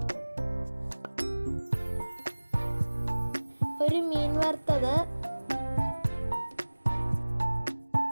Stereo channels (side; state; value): both; inverted; correlation -1.00